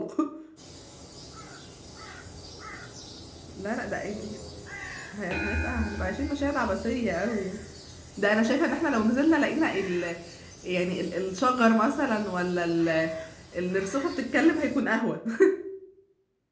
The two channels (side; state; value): both; identical; correlation 1.00